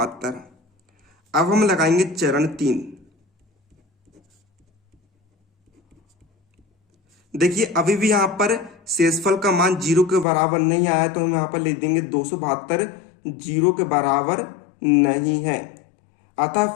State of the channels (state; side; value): drops out; right; at 10.2 s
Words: अब हम लगाएंगे चरण 3। देखिए अभी भी यहाँ पर शेषफल का मान 0 के बराबर नहीं आया, तो हम यहाँ पर लिख देंगे 272 0 के बराबर नहीं है। अतः